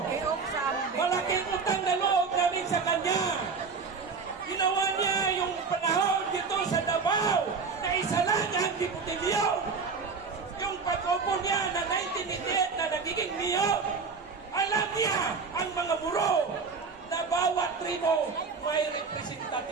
malaking utang na loob namin sa kanya. Ginawa niya yung panahon dito sa Davao na isa lang ang diputilyon. Yung pag-upo niya na 1988 na nagiging mayor, alam niya ang mga muro na bawat tribo may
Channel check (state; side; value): quieter; left; 5.0 dB